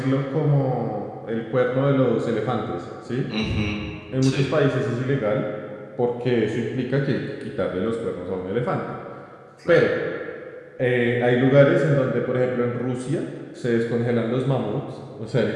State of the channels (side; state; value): both; identical; correlation 1.00